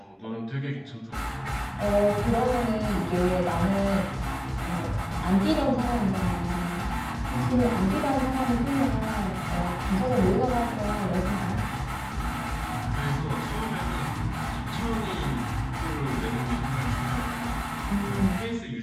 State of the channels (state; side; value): identical; both; correlation 1.00